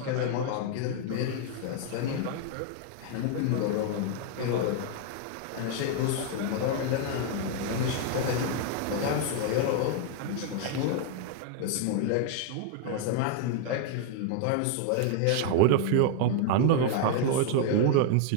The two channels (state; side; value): different; both; correlation 0.00